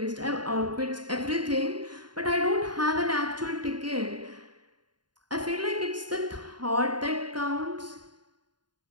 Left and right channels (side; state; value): left; late; 0.70 ms